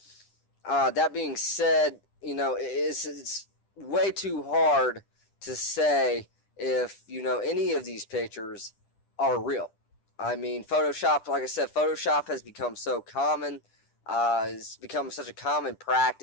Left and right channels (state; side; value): late; right; 10 ms